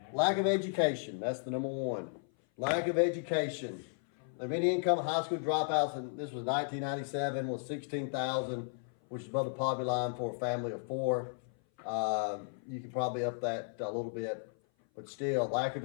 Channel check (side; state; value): right; silent; 55 dB below the other